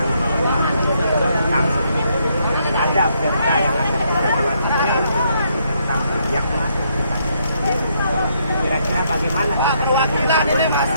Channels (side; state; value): both; inverted; correlation -0.74